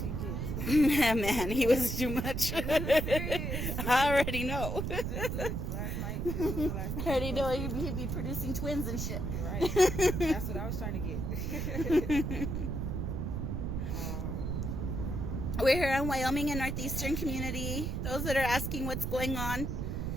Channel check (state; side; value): noise; right; rumble, 2 dB below the sound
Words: kids. Man, he was too much. Serious. I already know. Just look, last night, this was the last I time already he know posted. he'd be producing twins and shit. Right. That's what I was trying to get. We're here in Wyoming in Northeastern community. Those that are asking what's going on,